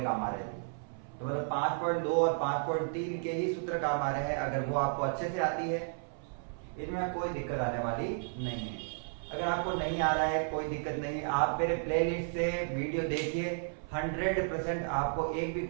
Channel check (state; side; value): silent; left; 56 dB below the other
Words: काम आ रहे हैं, तो मतलब 5.2 और 5.3 के ही सूत्र काम आ रहे हैं। अगर वो आपको अच्छे से आती है, इनमें कोई दिक्कत आने वाली नहीं है। अगर आपको नहीं आ रहा है कोई दिक्कत नहीं, आप मेरे प्लेलिस्ट से वीडियो देखिए, 100% आपको एक भी